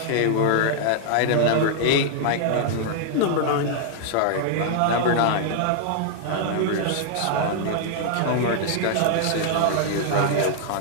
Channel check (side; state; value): both; different; correlation -0.01